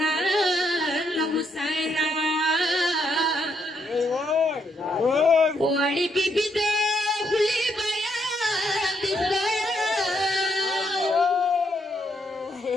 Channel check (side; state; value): both; normal; correlation 0.75